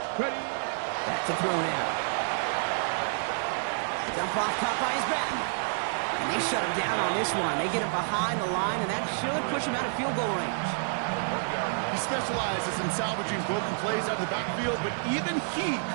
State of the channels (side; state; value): left; silent; 58 dB below the other